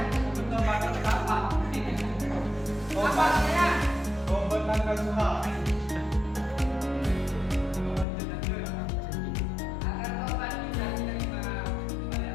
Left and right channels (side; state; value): right; drops out; at 8.1 s